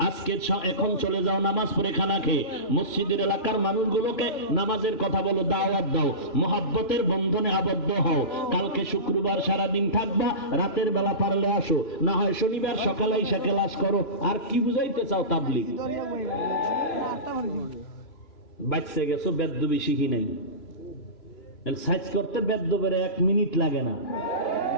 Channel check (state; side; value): late; right; 3.0 ms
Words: আজকে এখন চলে যাও নামাজ পড়ে খানা খেয়ে। মসজিদের এলাকার মানুষগুলোকে নামাজের কথা বলো, দাওয়াত দাও, মহব্বতের বন্ধনে আবদ্ধ হও। কালকে শুক্রবার সারাদিন থাকবা, রাতের বেলা পারলে আসো, না হয় শনিবার সকালে এসে ক্লাস করো। আর কি বুঝাইতে চাও তাবলীগ? বাচ্চা গেছো, বেদ্যবি শিখি নাই, সাইজ করতে বেদ্যবের 1 মিনিট লাগে না।